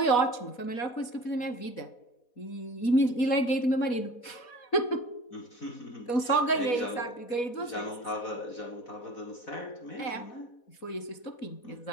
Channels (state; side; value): late; right; 4.1 ms